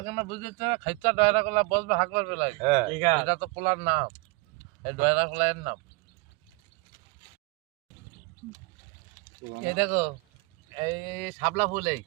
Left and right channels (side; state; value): left; quieter; 25.7 dB